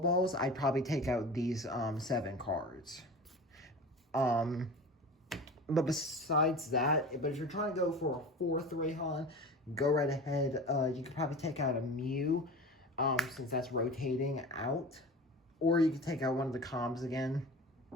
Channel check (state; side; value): normal; both; correlation 0.35